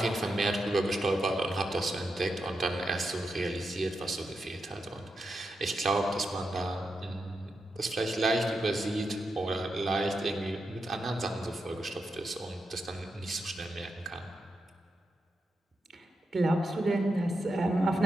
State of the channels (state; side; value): normal; both; correlation 0.86